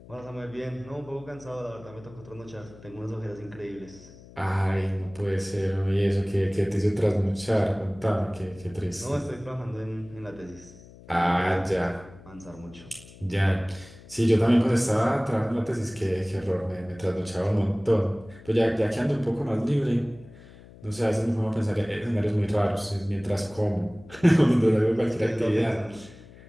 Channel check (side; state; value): left; noise; hum, 20 dB below the sound